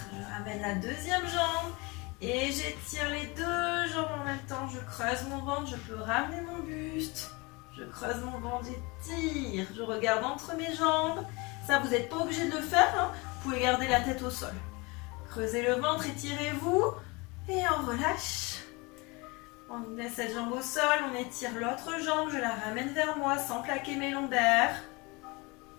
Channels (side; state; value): right; quieter; 26.4 dB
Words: Je ramène la deuxième jambe. Et j'étire les deux jambes en même temps. Je creuse mon ventre. Je peux ramener mon buste. Je creuse mon ventre. J'étire. Je regarde entre mes jambes. Ça, vous n'êtes pas obligé de le faire. Hein. Vous pouvez garder la tête au sol. Creusez le ventre. Étirez-vous. Et on relâche. On met cette jambe au sol. On étire l'autre jambe. Je la ramène vers moi sans plaquer mes lombaires.